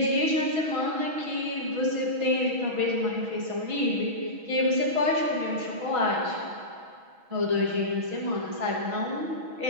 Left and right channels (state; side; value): late; left; 6.2 ms